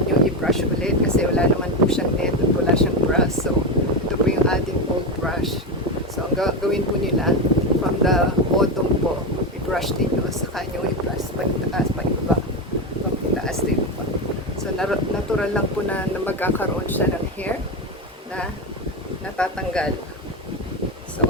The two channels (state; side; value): normal; both; correlation 0.14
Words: i-brush ulit kasi wala naman po siyang net at wala siyang brush. So, ito po yung ating old brush. So, ang gawin po nila, from the bottom po, i-brush ninyo, saka nyo i-brush pag-itaas, pag-ibaba, pag-itaas din po. So, natural lang po na magkakaroon siya ng hair na natatanggal. So,